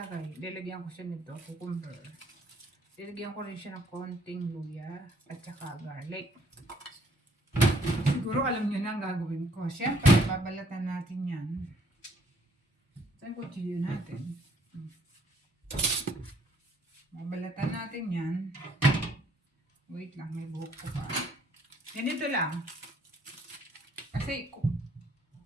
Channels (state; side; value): normal; both; correlation 0.64